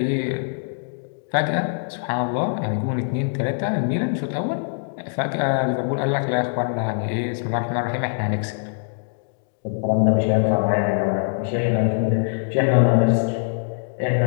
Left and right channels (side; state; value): right; silent; digital silence